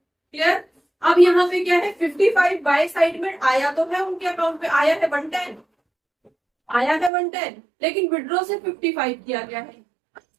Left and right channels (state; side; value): drops out; left; at 7.1 s